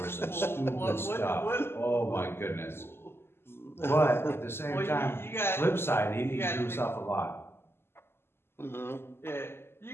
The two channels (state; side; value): late; right; 0.12 ms